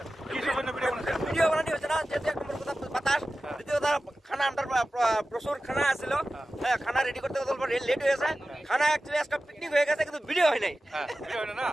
ভিডিও বানানি হচ্ছে না, যেহেতু এক নম্বর কথা বাতাস, দ্বিতীয় কথা খানা আমরা প্রচুর খানা আসছিল। হ্যাঁ, খানা রেডি করতে লেট হয়েছে। খানা অ্যাকচুয়ালি আজকে পিকনিক হয়ে গেছে, কিন্তু ভিডিও হয় নাই। ভিডিও হয় না।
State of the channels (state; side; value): normal; both; correlation 0.95